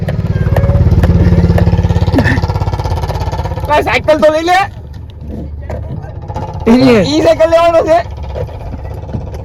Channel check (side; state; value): both; identical; correlation 1.00